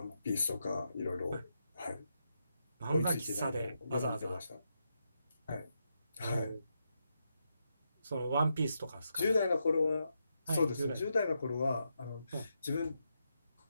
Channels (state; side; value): inverted; both; correlation -0.83